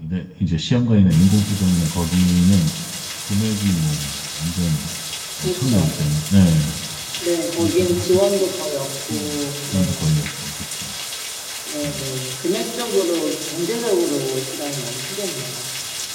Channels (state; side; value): identical; both; correlation 1.00